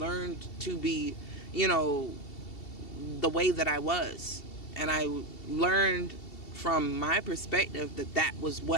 to be, the way that I was. And I learned from my perspective that was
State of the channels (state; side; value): late; right; 2.7 ms